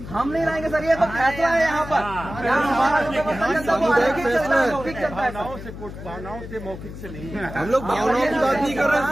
हम नहीं लाएंगे सर, ये तो फैसला है यहाँ पर। भावनाओं से कोर्ट, भावनाओं से मौखिक से नहीं है। हम लोग भावनाओं की बात नहीं कर रहे हैं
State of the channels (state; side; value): noise; left; hum, 12 dB below the sound